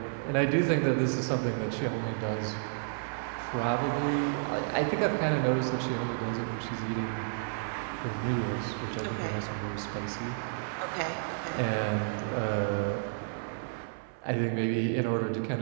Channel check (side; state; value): left; silent; 57 dB below the other